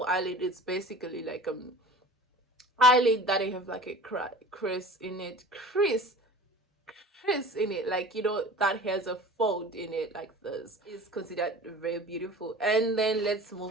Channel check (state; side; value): normal; both; correlation 0.40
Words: eyelid, it's basically like eyelid that I have like a crease in it, like that has a fold in it like this, is considered very beautiful. And then let's